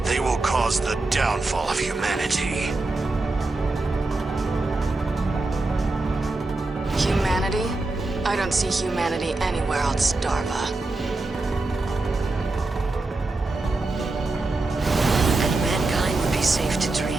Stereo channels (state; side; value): quieter; left; 3.2 dB